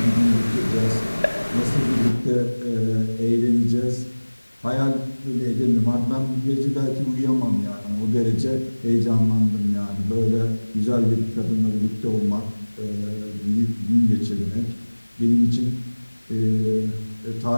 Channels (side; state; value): both; inverted; correlation -1.00